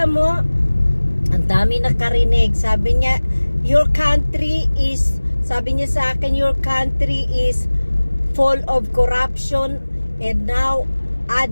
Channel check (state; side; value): inverted; both; correlation -1.00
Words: mo, ang dami nakarinig. Sabi niya, sabi niya sa akin, your country is full of corruption and now